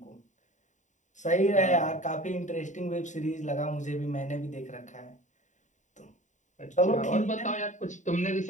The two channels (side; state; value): right; late; 0.36 ms